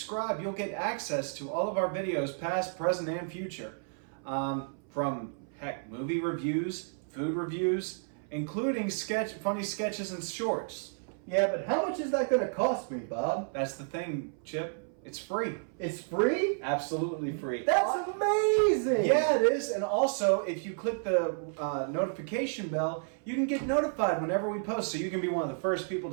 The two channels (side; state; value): left; silent; 57 dB below the other